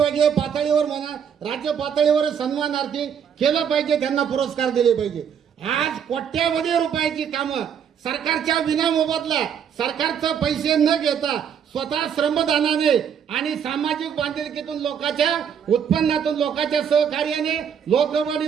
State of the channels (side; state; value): left; quieter; 7.9 dB